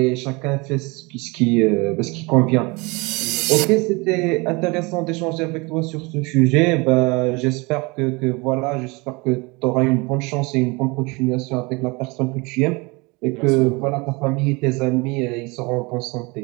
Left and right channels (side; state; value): left; quieter; 26.5 dB